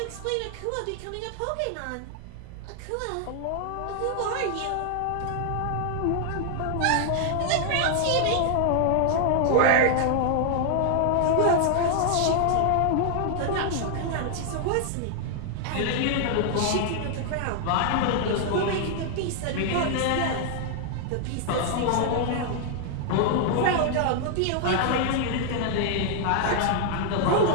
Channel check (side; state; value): both; different; correlation 0.00